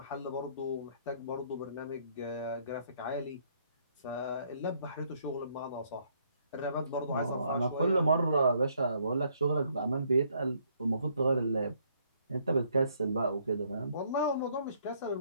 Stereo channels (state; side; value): inverted; both; correlation -0.68